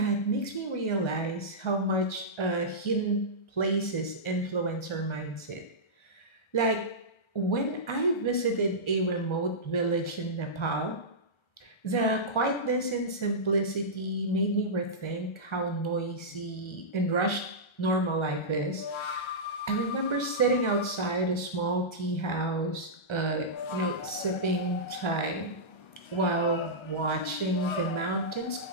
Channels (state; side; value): late; right; 1.3 ms